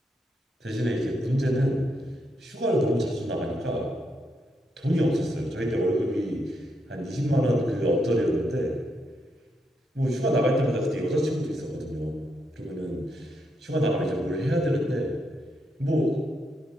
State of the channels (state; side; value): normal; both; correlation 0.80